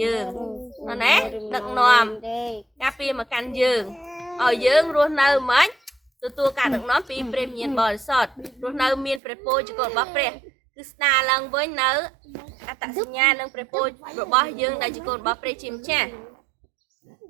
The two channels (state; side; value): drops out; left; at 9.2 s